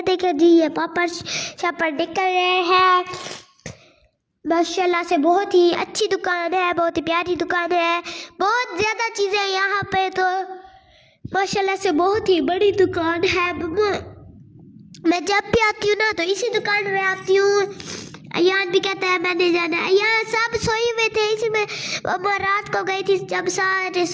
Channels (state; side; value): identical; both; correlation 1.00